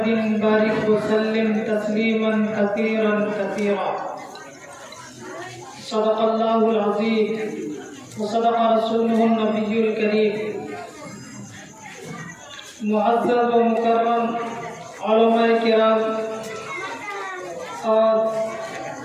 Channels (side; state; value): both; identical; correlation 1.00